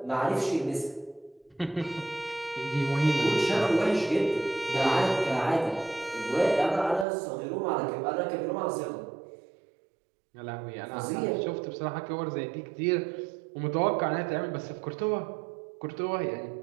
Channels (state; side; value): drops out; left; at 7.1 s